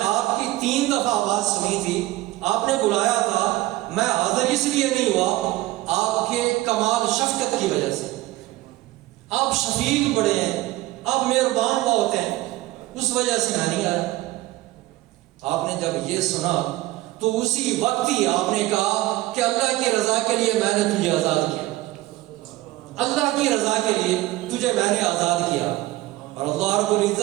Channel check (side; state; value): left; quieter; 17.5 dB